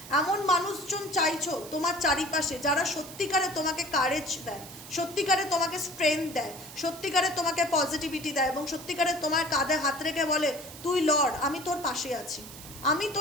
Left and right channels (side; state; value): right; noise; hiss, 15 dB below the sound